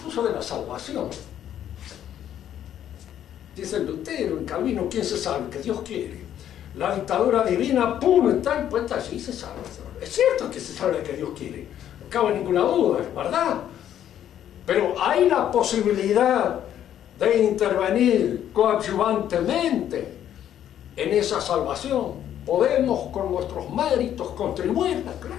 de la salvación. Dice Lutero, en Calvino, ¿quién se salva? Que Dios quiere. La dictadura divina, pum, está impuesta allí y se salva. Es cierto que se salva que Dios quiere, no cabe ninguna duda, es verdad. Pero hay la posibilidad de intervenir coadyuvantemente en esa salvación. Podemos con nuestros méritos contribuirla,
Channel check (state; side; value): quieter; right; 10.6 dB